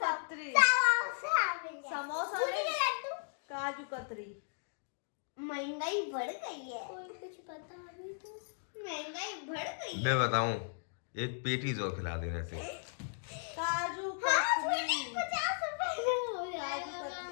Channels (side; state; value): right; silent; digital silence